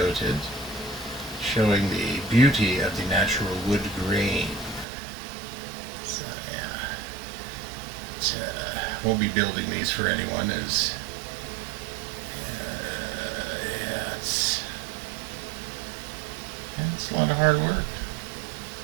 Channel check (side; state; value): left; drops out; at 4.9 s